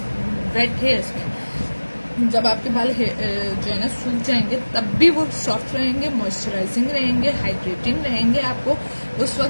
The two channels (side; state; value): both; inverted; correlation -1.00